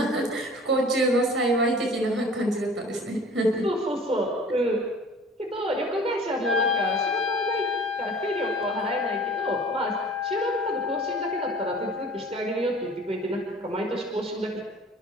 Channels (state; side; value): normal; both; correlation 0.46